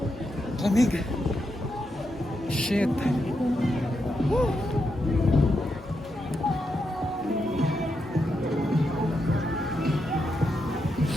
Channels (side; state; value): both; normal; correlation 0.84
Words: lamig. Shit. Woo.